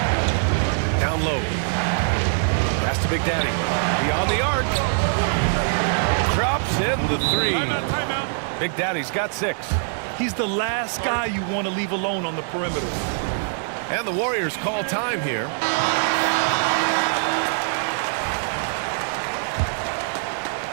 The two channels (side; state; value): left; silent; 63 dB below the other